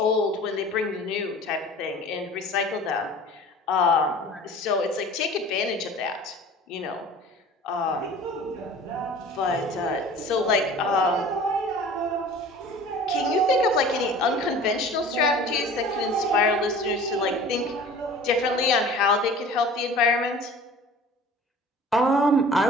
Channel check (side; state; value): both; normal; correlation 0.43